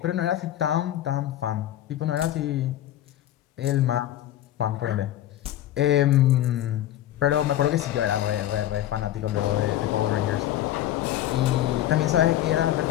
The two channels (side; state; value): right; quieter; 12.8 dB